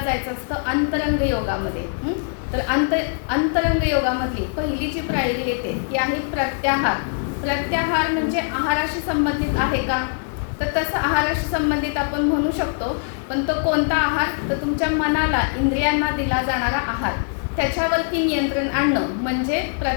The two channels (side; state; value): right; silent; 64 dB below the other